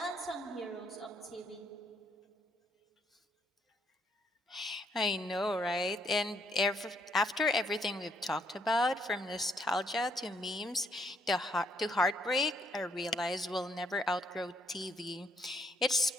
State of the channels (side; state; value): both; normal; correlation 0.71